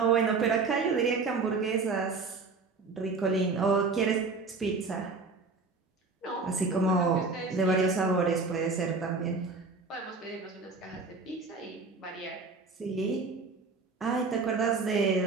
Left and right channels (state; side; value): quieter; left; 4.1 dB